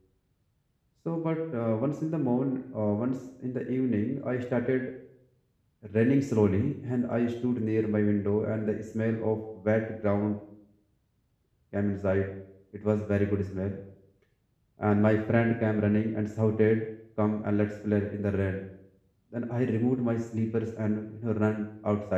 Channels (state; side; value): identical; both; correlation 1.00